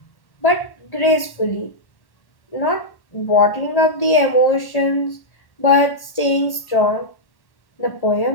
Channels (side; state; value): right; late; 1.1 ms